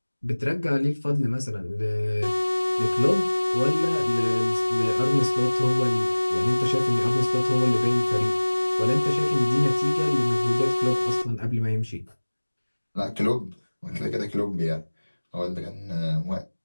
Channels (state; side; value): inverted; both; correlation -1.00